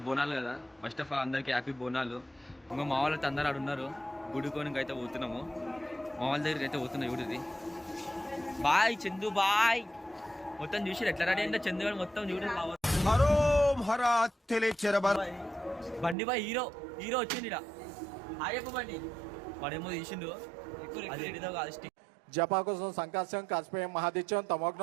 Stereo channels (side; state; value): left; drops out; at 16.2 s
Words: బోనాలు కదా. ఫస్ట్ ఆఫ్ ఆల్ అందరికీ హ్యాపీ బోనాలు. ఇంకా మా వాళ్ళతో అందరూ ఆడు ఉన్నారు. గుడికోనికి అయితే పోతున్నాము. మా వాళ్ళ దగ్గరికి అయితే పోతున్నాం. చూడది బాయ్ చందు బాయ్. మొత్తం చూసి ఎట్లా రెడీ అంటే చందు గారు మొత్తం చూడండి. బండి బాయ్ హీరో హీరో వచ్చింది ఇక్కడ. ఆయప్ప బండి వాడేమో తీసిండు. అదేంటిదో కాదు స్టిక్ జపాకుసం సంకాశం కాస్పేయం మహాదిత్యం